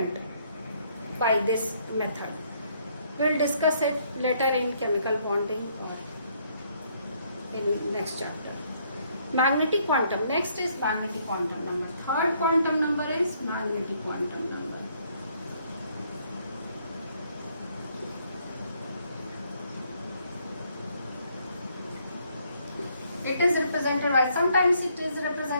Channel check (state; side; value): inverted; both; correlation -0.68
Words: by this method. We will discuss it later in chemical bonding or in next chapter. Magnetic quantum. Next is magnetic quantum number. Third quantum number is magnetic quantum number. It is represented by, sometimes it is